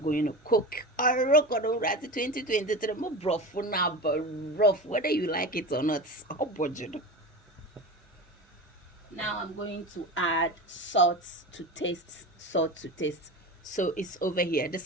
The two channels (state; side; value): normal; both; correlation 0.28